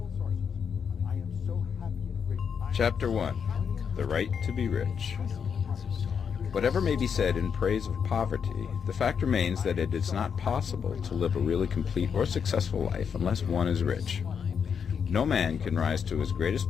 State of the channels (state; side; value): quieter; right; 6.9 dB